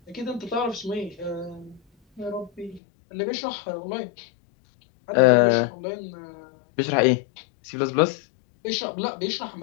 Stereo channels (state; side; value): drops out; right; at 2.8 s